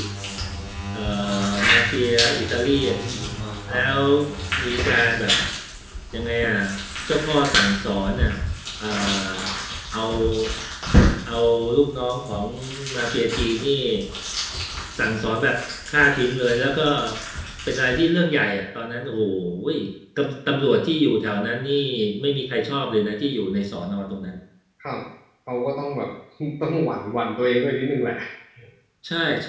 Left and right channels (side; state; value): both; identical; correlation 1.00